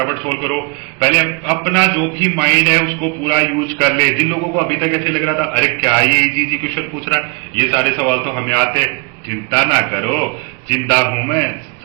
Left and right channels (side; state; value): left; quieter; 33.5 dB